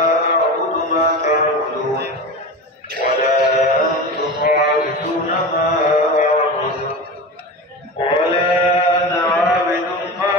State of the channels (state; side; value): normal; both; correlation 0.27